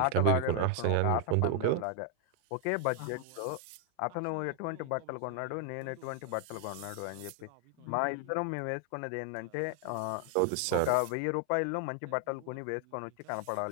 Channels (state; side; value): different; both; correlation 0.00